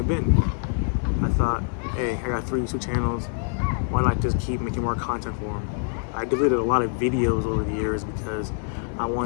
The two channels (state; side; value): silent; right; 57 dB below the other